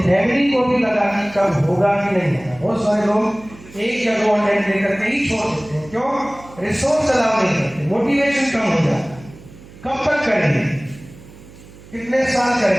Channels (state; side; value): noise; right; hum, 20 dB below the sound